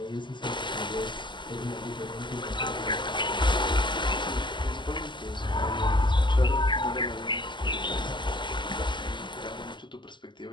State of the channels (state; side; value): late; right; 0.22 ms